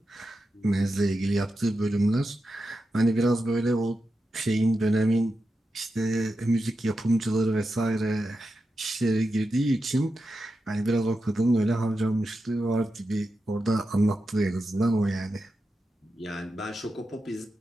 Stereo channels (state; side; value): normal; both; correlation 0.89